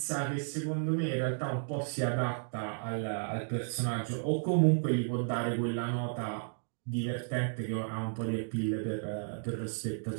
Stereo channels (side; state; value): left; silent; digital silence